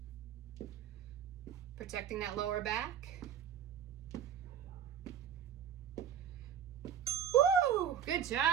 Protecting that lower back. Woo! Good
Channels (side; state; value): left; quieter; 8.8 dB